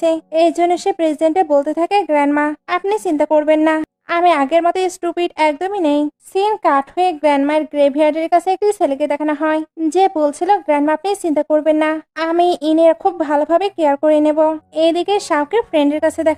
এই জন্য সে প্রেজেন্টে বলতে থাকে গ্র্যান্ডমা আপনি চিন্তা করবেন না, আমি আগের মতো স্টুপিড একদমই নেই। সিন কাট হয়ে গ্র্যান্ডমায়ের গ্রেভইয়ার্ডের কাছে একটি ছেলেকে দেখানো হয়, যে বলছিল গ্র্যান্ডমা আপনি চিন্তা করবেন না, আমি ইনের খুব ভালোভাবে কেয়ার করে নেব। এইদিকে শাওকে ফ্রেন্ডের কাছে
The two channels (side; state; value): both; identical; correlation 1.00